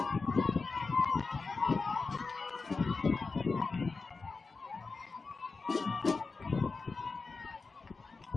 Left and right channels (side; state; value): right; quieter; 4.2 dB